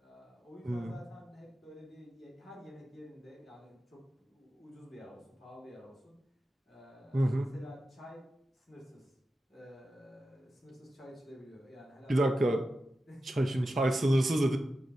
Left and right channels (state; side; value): normal; both; correlation 0.92